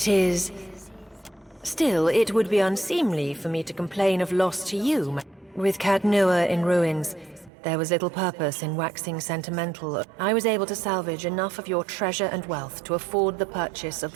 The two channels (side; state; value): left; drops out; at 7.5 s